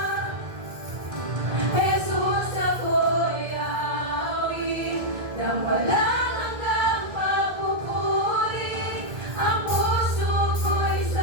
Jesus, ako'y aawit ng walang hanggang pagpupuri. Ang puso ko'y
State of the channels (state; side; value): late; left; 1.9 ms